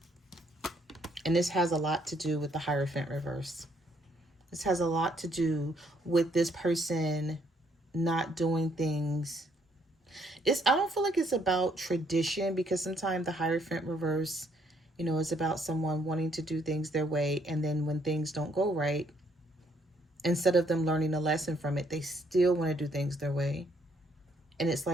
And this has a lot to do with the Hierophant reverse. This has a lot to do with this person not doing things. I don't feel like it's about tradition, because sometimes the Hierophant reverse, you know, is about someone wanting to do things their way. And then when things don't go right, instead of them learning a lesson from it, they still want to do things their way. And it's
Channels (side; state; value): both; normal; correlation 0.68